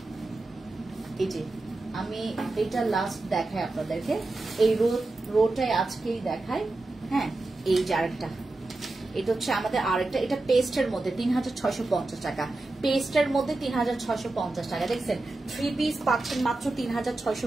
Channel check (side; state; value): left; quieter; 3.0 dB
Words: এই যে আমি এটা লাস্ট দেখাই আপনাদেরকে, এই রোটায় আজকেই দেখাই, হ্যাঁ। এই যে আরেকটা, এটা হচ্ছে আমাদের আরেকটা, এটা পেস্টের মধ্যে 3650 টাকা, পেস্টের মধ্যে 3650 টাকা। দেখছেন 3 পিস পাচ্ছেন মাত্র